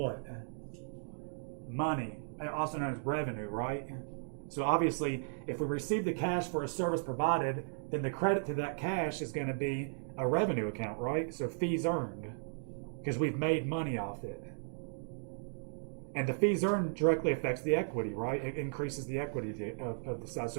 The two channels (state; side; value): silent; left; digital silence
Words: Money, also known as revenue, right? So obviously, if we receive the cash for a service provided, then the credit to that cash is going to be a revenue account, right? So fees earned, because we've made money off it. And the fees earned directly affects the equity, right? It increases the equity of the size.